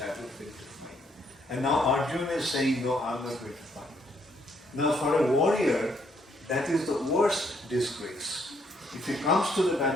to fight. And now Arjuna is saying, no, I'm not going to fight. Now for a warrior, that is the worst disgrace. If he comes to the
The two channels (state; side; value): normal; both; correlation 0.70